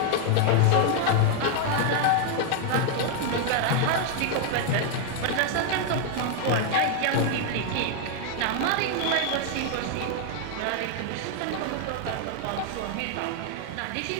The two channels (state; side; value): different; both; correlation 0.00